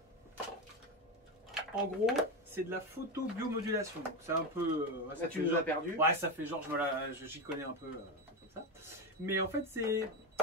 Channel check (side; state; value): both; normal; correlation 0.14